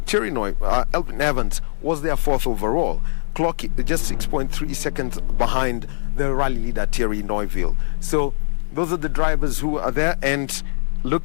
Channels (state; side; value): silent; right; 59 dB below the other